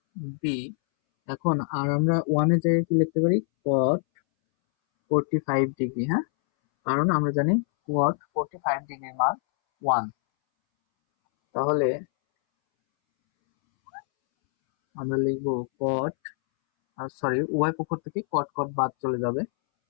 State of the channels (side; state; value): right; silent; 61 dB below the other